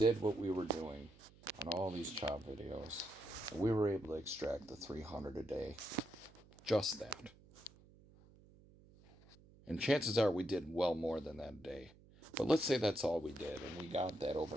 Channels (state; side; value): noise; right; hum, 24 dB below the sound